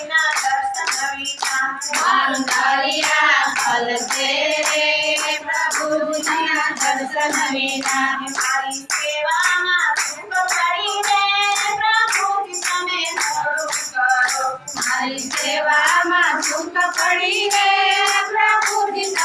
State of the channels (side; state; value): both; identical; correlation 1.00